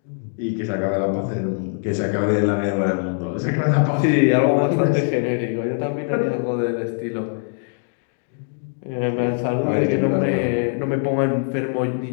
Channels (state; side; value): silent; right; 64 dB below the other